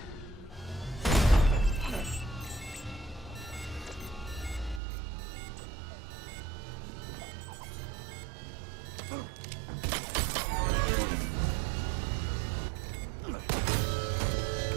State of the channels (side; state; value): left; drops out; at 4.8 s